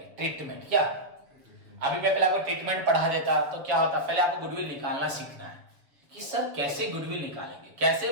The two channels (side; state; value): left; late; 6.9 ms